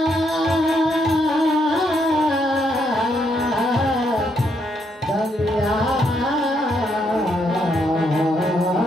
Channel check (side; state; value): both; normal; correlation 0.75